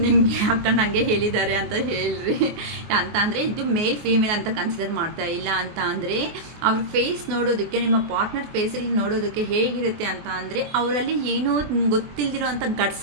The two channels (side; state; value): left; late; 24 ms